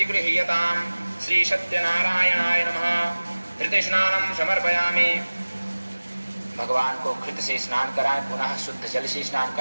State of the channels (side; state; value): both; inverted; correlation -1.00